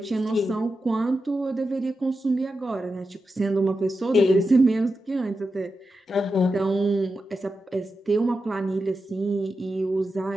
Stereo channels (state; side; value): normal; both; correlation 0.90